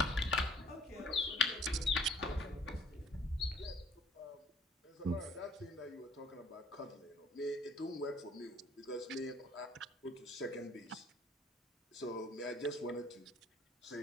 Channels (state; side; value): normal; both; correlation 0.58